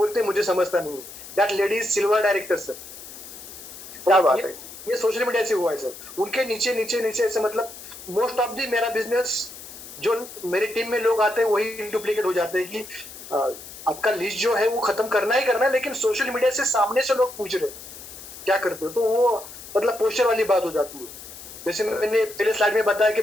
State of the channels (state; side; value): noise; left; hiss, 14 dB below the sound